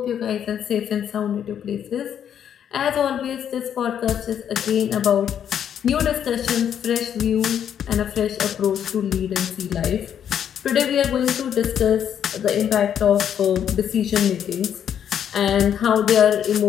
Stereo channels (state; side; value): quieter; right; 9.1 dB